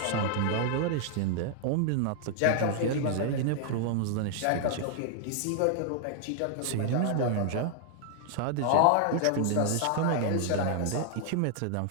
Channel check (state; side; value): different; both; correlation -0.01